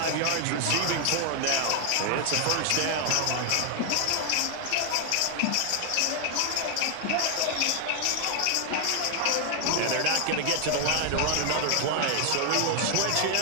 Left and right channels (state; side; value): different; both; correlation 0.00